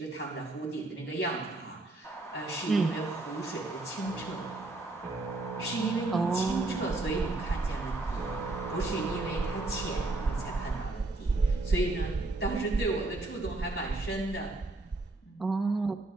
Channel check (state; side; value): quieter; left; 3.0 dB